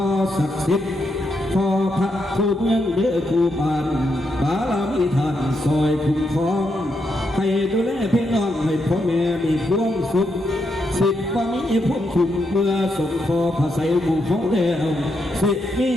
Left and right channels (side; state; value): both; normal; correlation 0.81